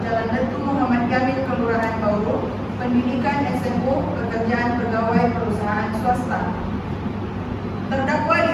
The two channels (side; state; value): both; identical; correlation 1.00